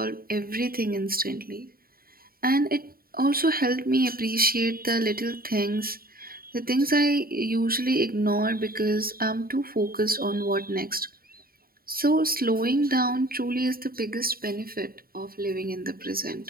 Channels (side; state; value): left; late; 0.43 ms